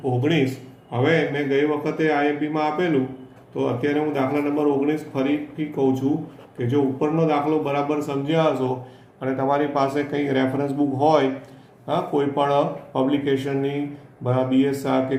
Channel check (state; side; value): identical; both; correlation 1.00